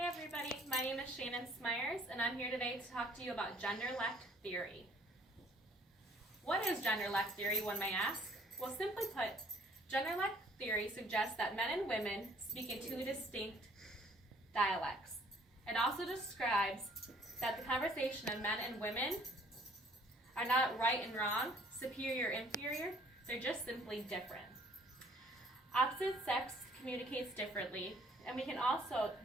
everybody, my name is Shannon Smyers and I'm here today to talk to you about Genderlect theory. What is Genderlect theory, one may ask? Well, simply put, Genderlect theory suggests that men and women speak in two distinct dialects. It also describes that the conversation of men and women are not right and wrong, superior, inferior, they're just simply different. Opposite sex communicates differently, and we can also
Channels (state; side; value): normal; both; correlation 0.59